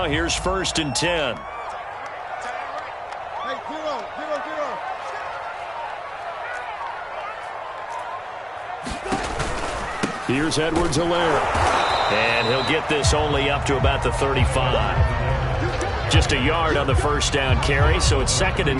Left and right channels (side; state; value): both; identical; correlation 1.00